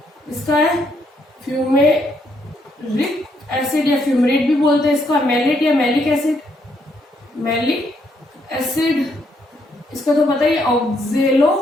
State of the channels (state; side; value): normal; both; correlation 0.74